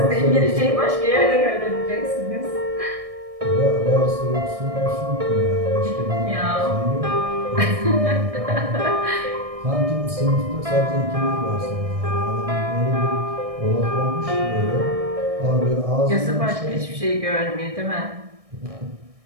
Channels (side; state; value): left; late; 1.6 ms